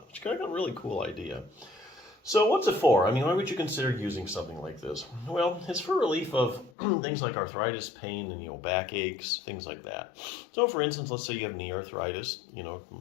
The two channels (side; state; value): right; drops out; at 6.7 s